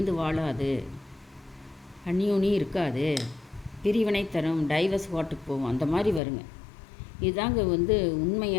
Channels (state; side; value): drops out; right; at 6.2 s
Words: வாழாது, அந்யோன்யம் இருக்காது, பிரிவினை தரும், டைவர்ஸ் வாட்டுக்கு போவோம், அந்த மாதிரி வருங்க. இதுதாங்க வந்து